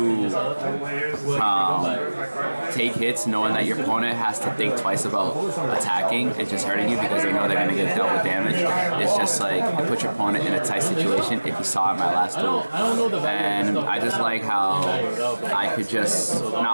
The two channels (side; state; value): both; inverted; correlation -1.00